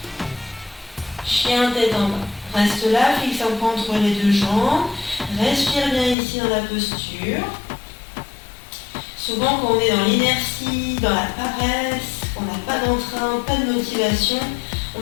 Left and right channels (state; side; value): drops out; right; at 6.2 s